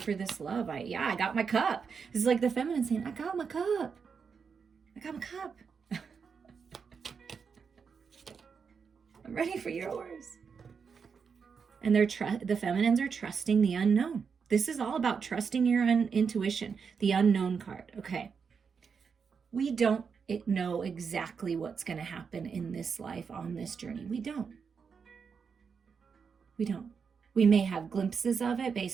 this love. I got my cup. This is like the feminine saying, I got my cup. I got my cup. I'm ready for yours. And the feminines are trusting the unknown. This is all about trusting your intuition, the unknown card. Okay. We don't know exactly what's going to happen in this life on this journey. We don't. We may have glimpses of it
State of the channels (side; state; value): left; quieter; 6.0 dB